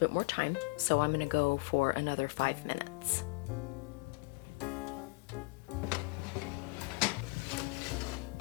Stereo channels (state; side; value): quieter; right; 29.3 dB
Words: bit more time, so I'm going to go for another 5 minutes. There